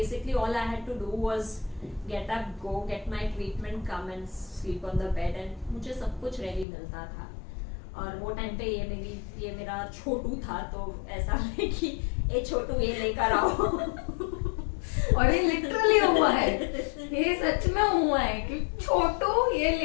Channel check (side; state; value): right; drops out; at 6.7 s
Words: all I had to do was get up, go get my treatment, come and sleep on the bed, and मुझे सब कुछ रेडी मिलता था. और वो टाइम पे ये मेरा छोटू था, तो ऐसा है कि ए छोटू ये लेकर आओ. और ये लिटरली हुआ है, ये सच में हुआ है कि छोटू ये